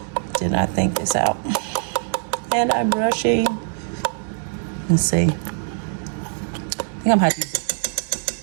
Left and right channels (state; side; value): silent; left; digital silence